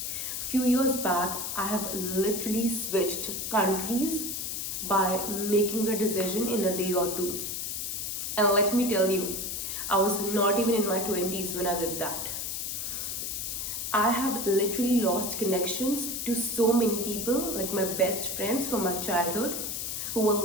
Few years back, I have literally switched countries by making a decision in a day or two. And let me tell you, I was not even in my 20s when I did that. I have literally lost connections to so many people, like my best friends from my childhood, who were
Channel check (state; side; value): noise; left; hiss, 3 dB below the sound